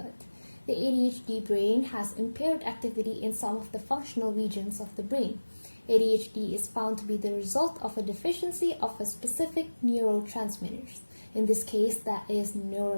The ADHD brain has impaired activity in some of the functional regions of the brain. ADHD is found to be the result of a deficiency of a specific neurotransmitters. In this case, that is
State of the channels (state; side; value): inverted; both; correlation -1.00